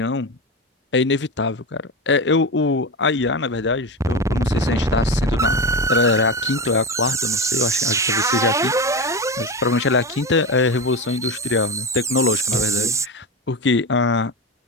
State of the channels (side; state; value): both; normal; correlation 0.20